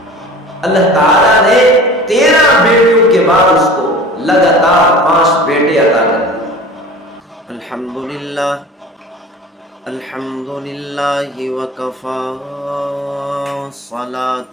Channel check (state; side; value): normal; both; correlation 0.40